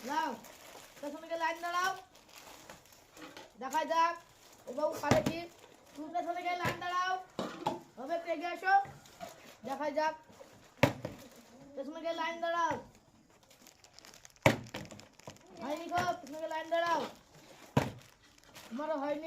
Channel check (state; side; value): identical; both; correlation 1.00